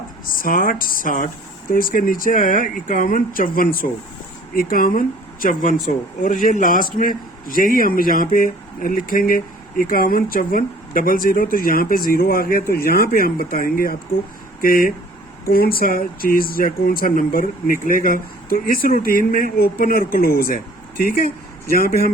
60, 60, तो इसके नीचे आया 51, 5400, 51, 5400, और ये लास्ट में यही हम यहाँ पे लिखेंगे 51, 54, 00। तो यहाँ पे 0 आ गया, तो यहाँ पे हम बताएंगे आपको कि कौन सा चीज या कौन सा नंबर निकलेगा। तो इस रूटीन में ओपन और क्लोज है, ठीक है। यहाँ पे हम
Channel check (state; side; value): normal; both; correlation 0.52